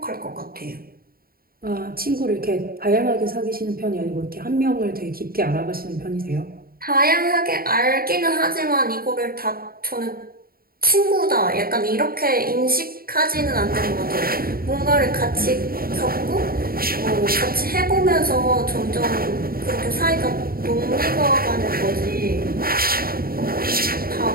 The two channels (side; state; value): left; late; 0.43 ms